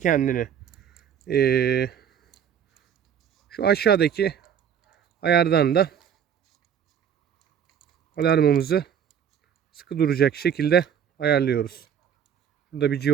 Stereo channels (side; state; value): left; quieter; 8.5 dB